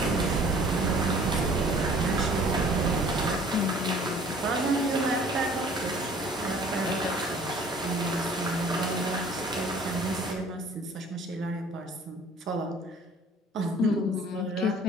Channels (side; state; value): both; normal; correlation 0.52